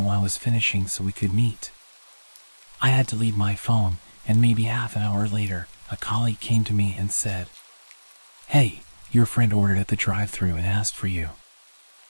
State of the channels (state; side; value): inverted; both; correlation -1.00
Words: I was finishing so we could meet. I had to leave my phone, and maybe half an hour later, a colleague came to me and said, "Hey, your friend ordered at the drive-thru and asked for you."